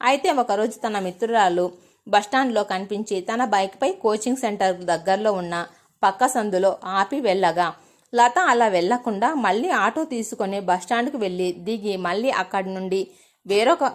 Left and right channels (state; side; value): identical; both; correlation 1.00